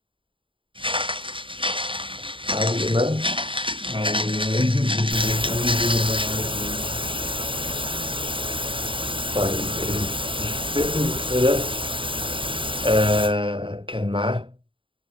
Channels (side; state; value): left; late; 0.25 ms